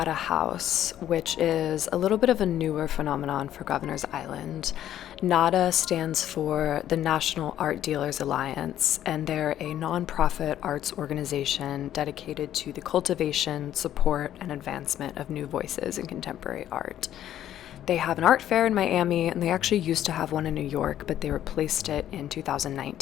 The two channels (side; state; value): right; quieter; 11.6 dB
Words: House, which is a little bit of a newer phenomenon for Governor's Island. Nada stands for the National Art Dealers Alliance, and they're a nonprofit arts organization dedicated to the cultivation, support, and advancement of new voices in contemporary art. They have an art fair in Miami, and they actually used to have one in New York, but they replaced it in